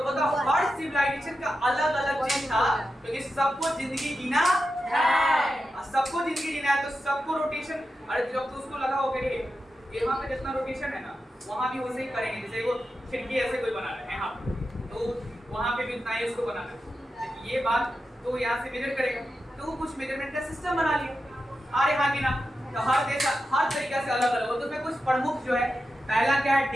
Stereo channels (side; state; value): both; normal; correlation 0.90